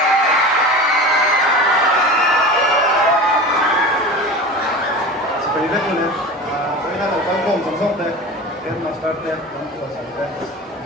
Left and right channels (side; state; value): both; normal; correlation 0.32